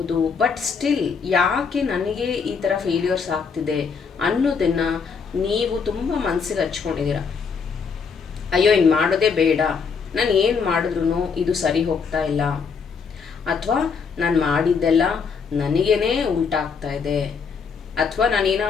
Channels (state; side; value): quieter; right; 5.7 dB